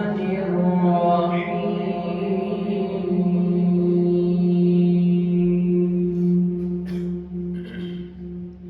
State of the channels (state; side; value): identical; both; correlation 1.00